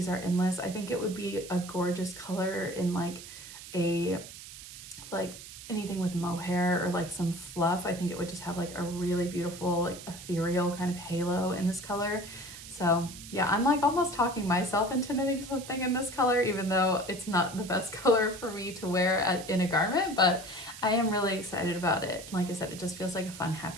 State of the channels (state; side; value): noise; right; hiss, 14 dB below the sound